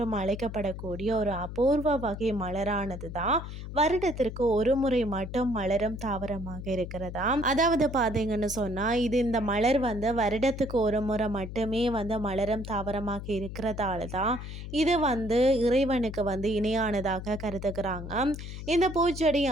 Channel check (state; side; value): noise; left; hum, 9 dB below the sound